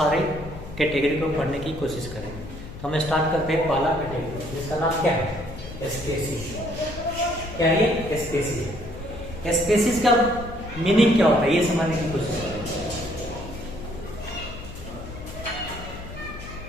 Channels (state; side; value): noise; left; hum, 13 dB below the sound